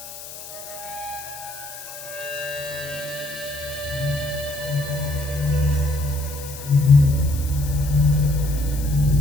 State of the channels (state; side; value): noise; left; hiss, 13 dB below the sound